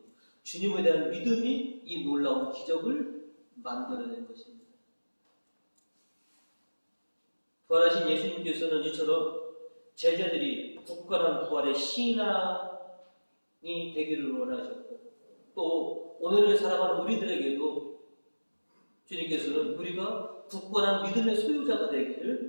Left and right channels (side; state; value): both; inverted; correlation -1.00